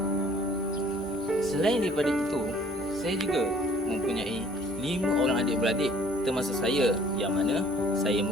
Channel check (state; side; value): normal; both; correlation 0.56